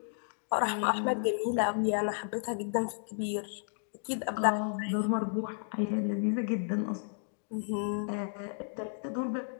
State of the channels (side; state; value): right; silent; digital silence